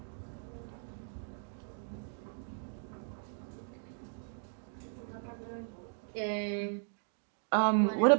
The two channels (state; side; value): silent; left; digital silence